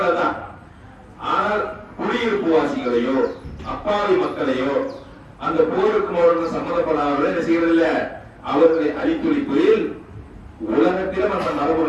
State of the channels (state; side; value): identical; both; correlation 1.00